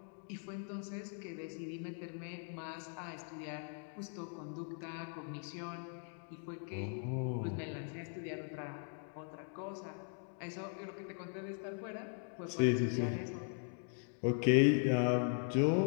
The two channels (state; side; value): silent; right; 51 dB below the other